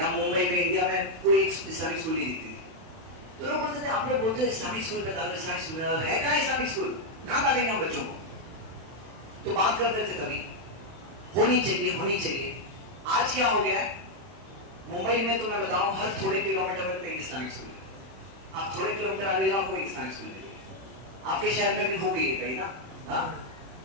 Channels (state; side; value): late; left; 31 ms